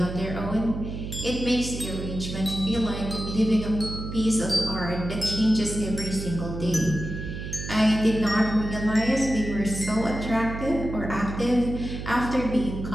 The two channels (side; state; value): right; noise; hum, 7 dB below the sound